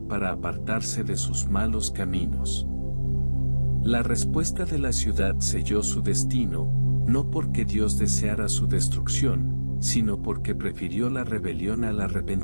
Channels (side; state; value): both; inverted; correlation -1.00